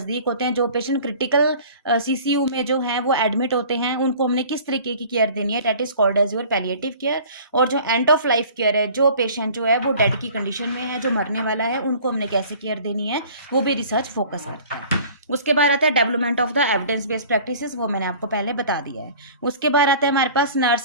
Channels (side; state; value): both; inverted; correlation -0.47